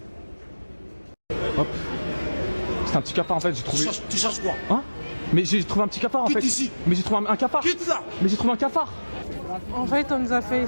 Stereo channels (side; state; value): both; inverted; correlation -1.00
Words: Hop. C'est un petit cafard en fait, j'ai trouvé. Tu cherches quoi? Hein? Mais j'ai trouvé un petit cafard en Quitte fait. ici. Mais j'ai trouvé un cafard. Quitte là. Mais j'ai trouvé un cafard. En fait, on nous a fait